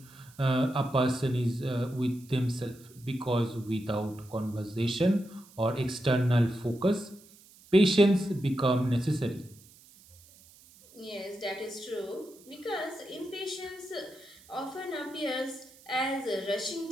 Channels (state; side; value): noise; right; hiss, 25 dB below the sound